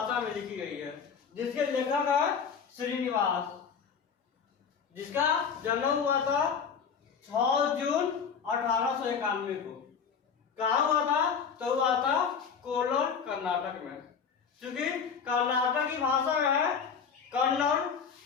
में लिखी गई है, जिसके लेखक है श्रीनिवास, जिसका जन्म हुआ था 6 जून 1891 को। कहाँ हुआ था? तो हुआ था कोल्लर, कर्नाटक में। क्योंकि कर्नाटक की भाषा में है कन्नड़,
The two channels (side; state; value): right; quieter; 6.5 dB